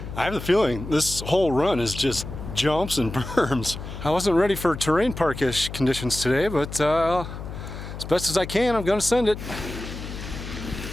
I have the feeling this whole run is just jumps and berms. I wasn't ready for terrain park-ish conditions today, but as best as I can, I'm gonna send it.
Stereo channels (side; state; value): left; noise; hum, 9 dB below the sound